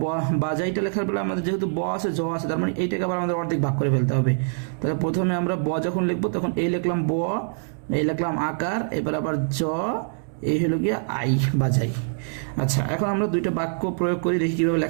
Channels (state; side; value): silent; left; digital silence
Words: বাজাইটা লেখার বেলা আমাদের যেহেতু ব আছে জ আছে, তার মানে এইটাকে আবার আমাদের অর্ধেক ভাগ করে ফেলতে হবে। তাহলে প্রথমে আমরা ব যখন লিখবো তখন এই লিখলাম ব, এই লিখলাম আকার, এবার আবার জ, এই হলো গিয়ে আই বাজাই। আচ্ছা এখন আমরা দুইটা বাক্য প্রয়োগ করি, দেখি কিভাবে